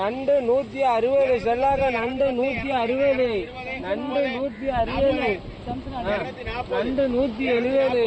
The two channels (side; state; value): both; identical; correlation 1.00